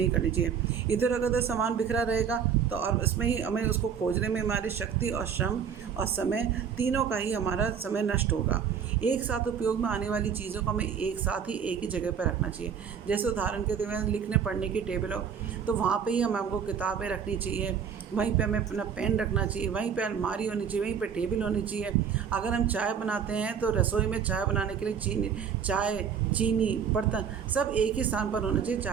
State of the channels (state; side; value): quieter; left; 7.4 dB